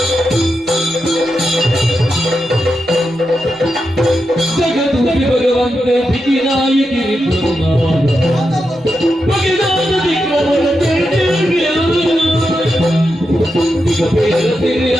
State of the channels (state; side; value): normal; both; correlation 0.87